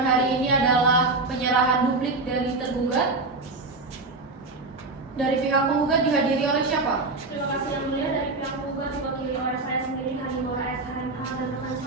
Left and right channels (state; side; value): quieter; left; 3.4 dB